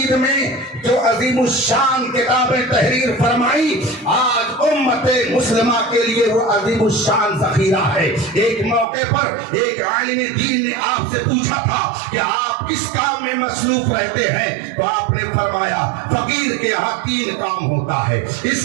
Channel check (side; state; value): left; drops out; at 8.8 s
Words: میں جو عظیم الشان کتابیں تحریر فرمائی، آج امت مسلمہ کے لیے وہ عظیم الشان ذخیرہ ہے۔ ایک موقع پر ایک عالم دین نے آپ سے پوچھا تھا کہ آپ کس کام میں مصروف رہتے ہیں، تو آپ نے فرمایا فقیر کے یہاں 3 کام ہوتا ہے، اس